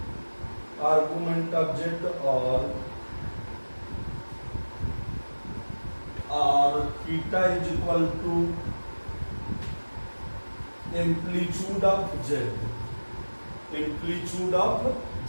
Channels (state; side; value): inverted; both; correlation -1.00